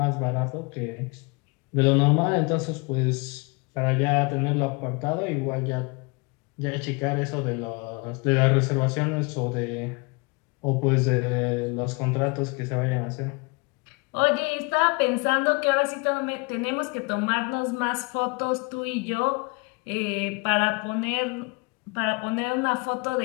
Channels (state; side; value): quieter; right; 29.7 dB